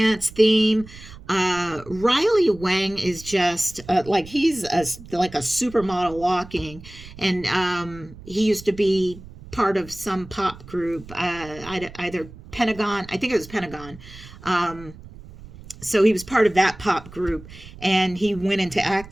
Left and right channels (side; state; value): right; noise; rumble, 18 dB below the sound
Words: theme. Riley Wang is just like he's like a supermodel walking, and he used to be part of some pop group, either Pentagon. I think it was Pentagon. So he was part of that pop group, and he went into